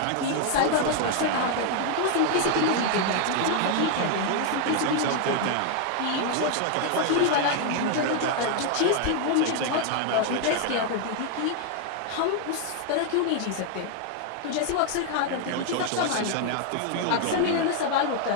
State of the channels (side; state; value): both; different; correlation 0.00